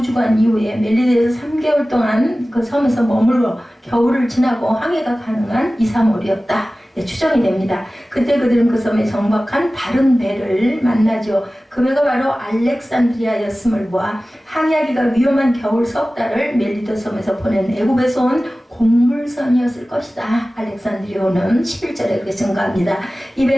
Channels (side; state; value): both; normal; correlation 0.97